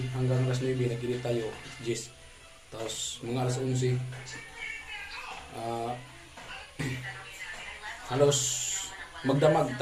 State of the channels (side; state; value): both; identical; correlation 1.00